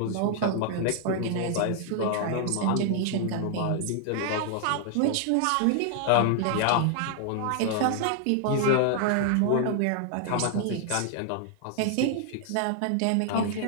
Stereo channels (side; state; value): both; different; correlation -0.01